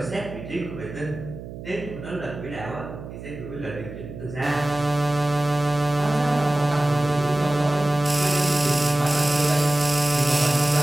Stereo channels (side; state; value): right; noise; hum, 12 dB below the sound